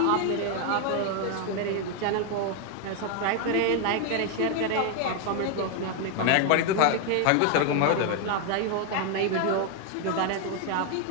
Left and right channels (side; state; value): both; different; correlation 0.01